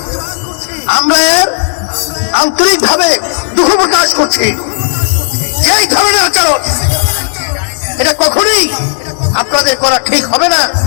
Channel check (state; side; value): silent; right; digital silence